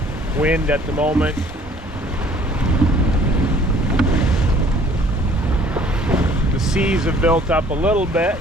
wind at the moment. The seas have built up a little bit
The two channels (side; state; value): both; normal; correlation 0.56